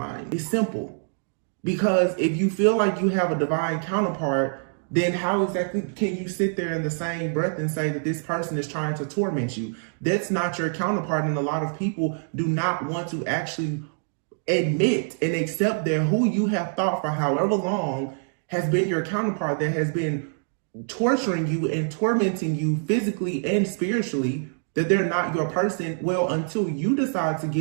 It's simple. Because if you feel like you have a divine counterpart, then how exactly can you sit there in the same breath and say that this person is trying to torment you? That's not your counterpart. And a lot of people do not want to actually admit and accept that who you have thought for however long has been your counterpart, that has been torturing you and tormenting you physically and spiritually, that they're not your person. Well, until you decide to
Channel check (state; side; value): silent; left; digital silence